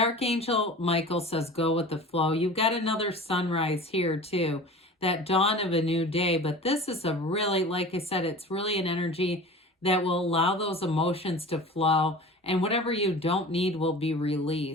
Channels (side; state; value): both; normal; correlation 0.38